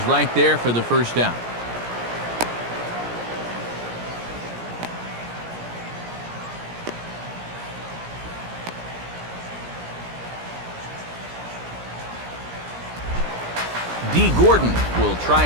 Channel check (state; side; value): late; left; 17 ms